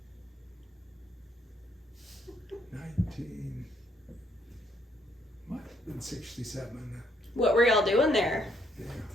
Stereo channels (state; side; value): normal; both; correlation 0.71